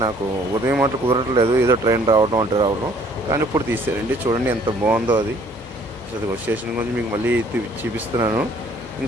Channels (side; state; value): both; normal; correlation 0.59